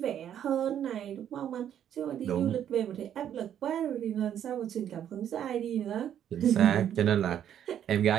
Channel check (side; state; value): left; quieter; 9.9 dB